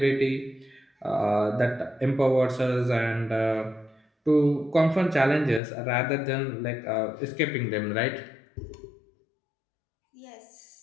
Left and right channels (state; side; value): drops out; right; at 5.6 s